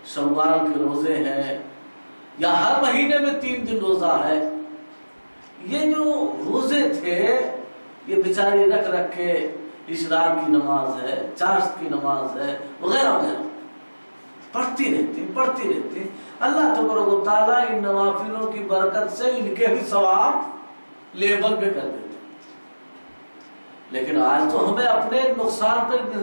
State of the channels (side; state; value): both; inverted; correlation -1.00